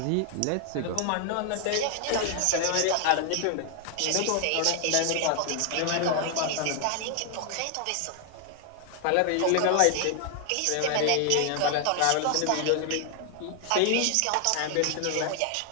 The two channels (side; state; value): both; different; correlation 0.00